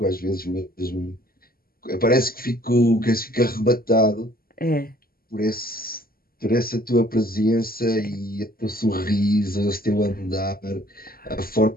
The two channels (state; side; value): late; right; 0.43 ms